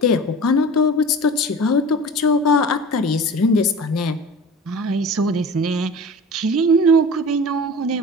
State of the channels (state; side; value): normal; both; correlation 0.37